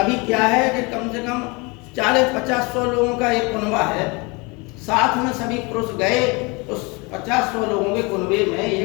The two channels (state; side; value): quieter; right; 27.9 dB